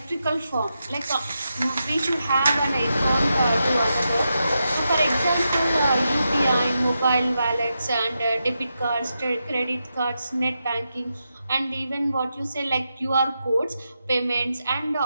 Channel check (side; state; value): both; inverted; correlation -0.87